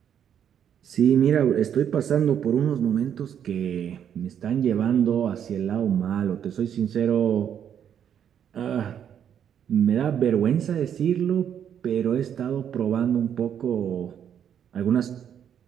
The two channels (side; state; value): left; quieter; 8.9 dB